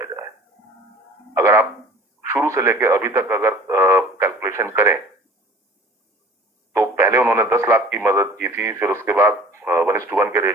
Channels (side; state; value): both; normal; correlation 0.46